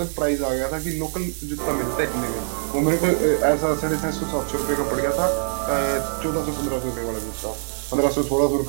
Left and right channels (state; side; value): silent; left; digital silence